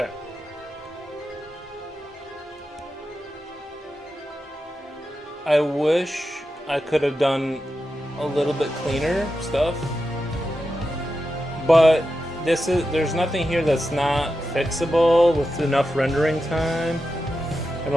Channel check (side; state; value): both; normal; correlation 0.90